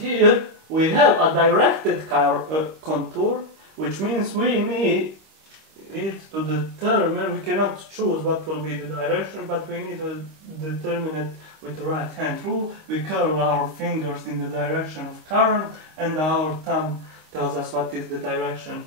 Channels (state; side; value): late; left; 26 ms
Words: we have a directed contour, which means we need it to determine, we cannot choose what will be the direction, but we need to determine it with the right hand rule. We curl our fingers in the direction of current and our thumb tells us what is the direction